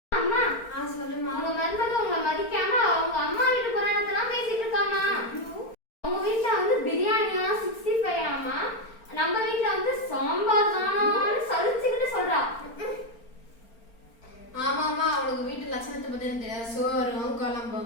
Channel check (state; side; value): late; right; 4.4 ms